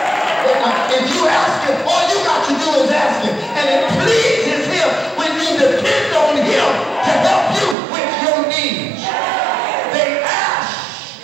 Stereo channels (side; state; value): left; drops out; at 7.8 s